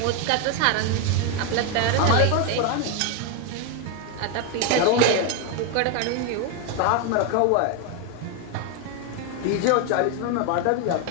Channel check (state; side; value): different; both; correlation 0.01